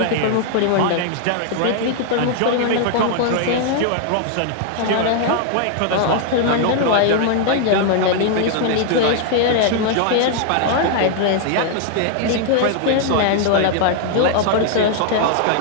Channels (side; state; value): both; different; correlation 0.00